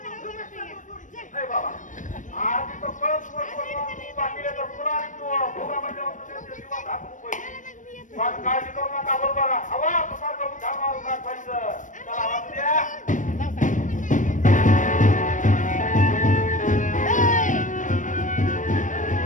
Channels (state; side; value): late; right; 0.37 ms